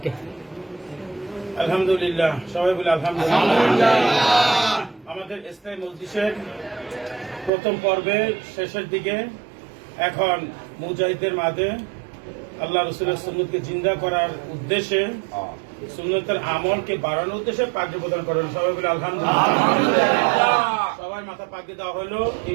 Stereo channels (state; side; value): drops out; left; at 7.5 s